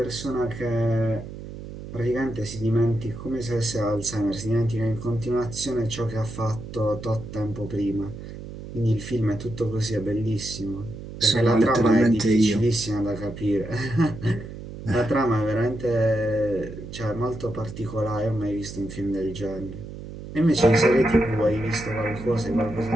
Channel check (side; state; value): right; noise; hum, 11 dB below the sound